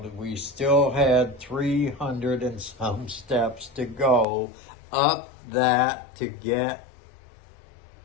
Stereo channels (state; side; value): drops out; right; at 4.2 s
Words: we still had 300 and some steps to go up that to get